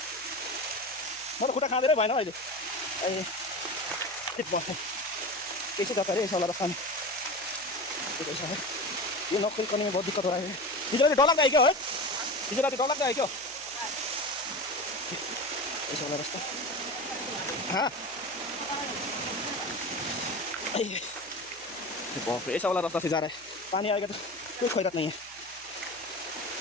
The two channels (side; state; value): right; noise; hum, 27 dB below the sound